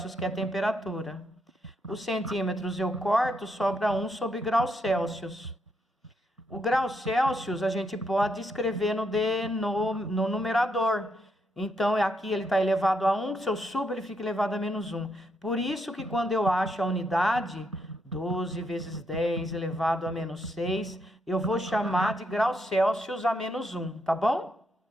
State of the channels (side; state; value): both; normal; correlation 0.77